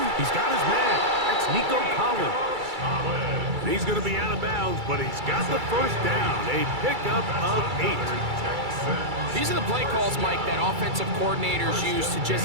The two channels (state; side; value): late; left; 2.3 ms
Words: He's got his man. That's Nico Collins. He's going to be out of bounds, but he's got the first down. A pickup of 8. These are the play calls, Mike, that offensive coordinators use to